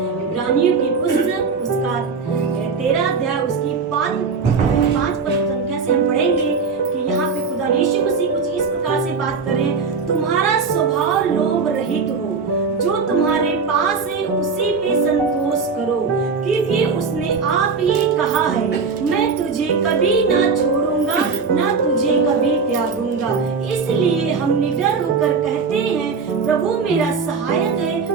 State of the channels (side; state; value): left; quieter; 5.0 dB